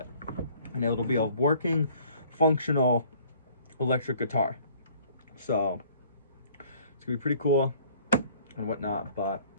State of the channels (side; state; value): both; inverted; correlation -0.55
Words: and it'll be a working, functional electric guitar. So it's gonna be pretty cool and whatnot. But